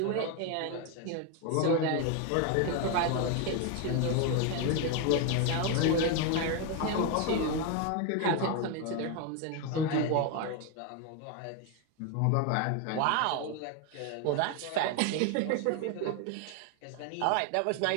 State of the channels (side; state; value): both; different; correlation 0.01